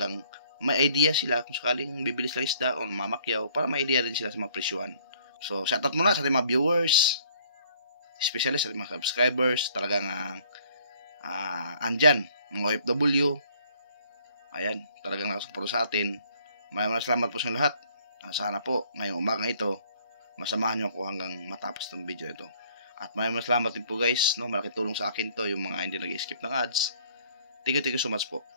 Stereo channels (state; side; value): inverted; both; correlation -0.60